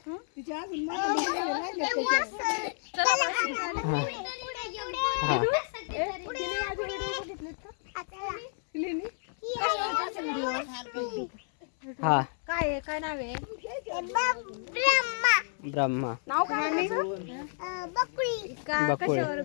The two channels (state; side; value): silent; right; 58 dB below the other